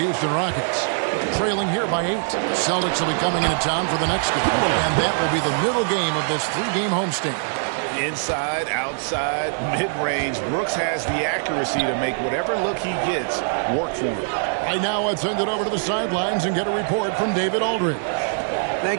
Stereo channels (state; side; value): silent; left; digital silence